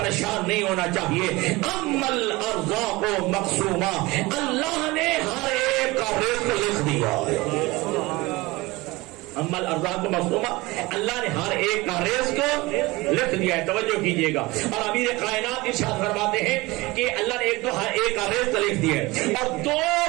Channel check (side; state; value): left; quieter; 21.8 dB